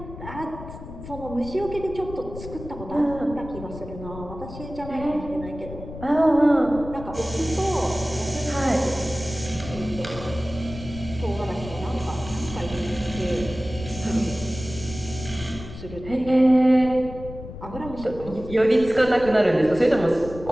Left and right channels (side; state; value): left; noise; rumble, 12 dB below the sound